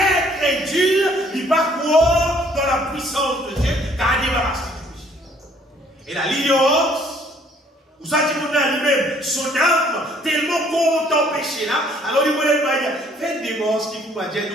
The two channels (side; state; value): both; normal; correlation 0.61